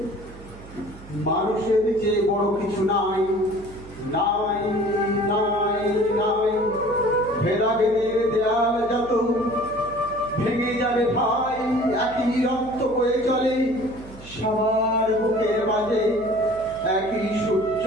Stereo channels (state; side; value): noise; right; hum, 18 dB below the sound